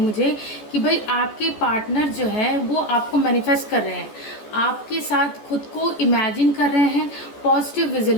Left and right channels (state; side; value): late; right; 14 ms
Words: मुझे कि भाई आपके पार्टनर जो है वो आपको मैनिफेस्ट कर रहे हैं, आपके साथ खुद को इमेजिन कर रहे हैं, पॉजिटिव